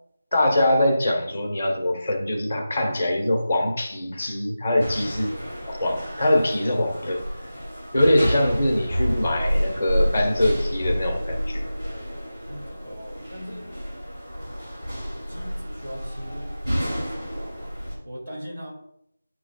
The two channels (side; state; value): both; inverted; correlation -0.92